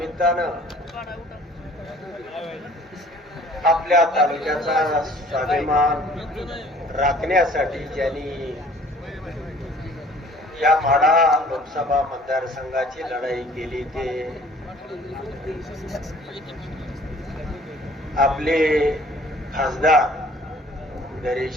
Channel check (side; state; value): both; normal; correlation 0.53